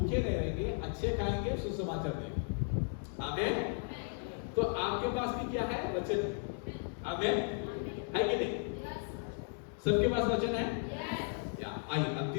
नहीं रहेंगे, अच्छे खाएंगे, सुसमाचार देंगे। आमीन। तो आपके पास भी क्या है, वचन। आमीन। है कि नहीं? सबके पास वचन है। या आइए अब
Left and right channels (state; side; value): silent; right; 54 dB below the other